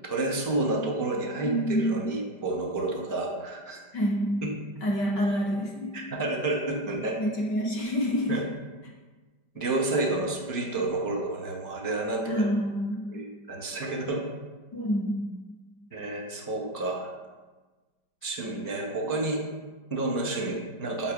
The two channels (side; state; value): right; late; 5.1 ms